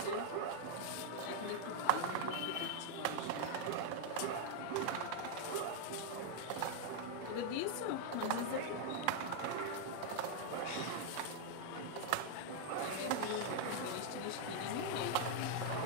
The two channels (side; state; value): both; different; correlation 0.00